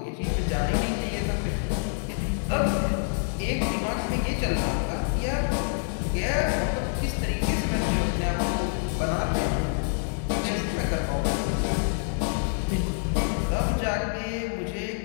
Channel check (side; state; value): right; silent; digital silence